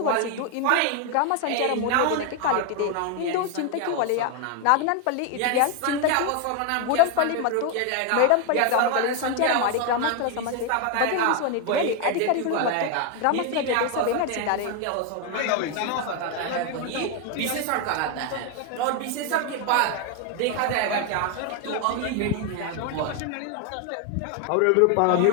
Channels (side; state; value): both; different; correlation 0.01